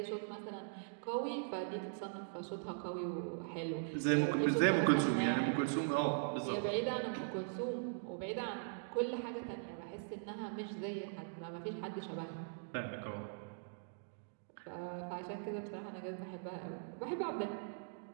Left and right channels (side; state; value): left; silent; digital silence